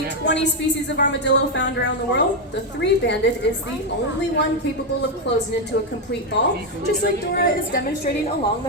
20 species of armadillo found around the world, the three-banded is the only one capable of closing into a complete ball, just like Dora is demonstrating along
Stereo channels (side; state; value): both; normal; correlation 0.04